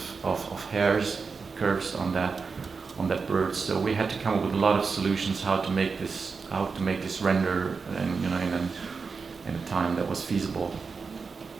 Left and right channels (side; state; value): left; quieter; 4.9 dB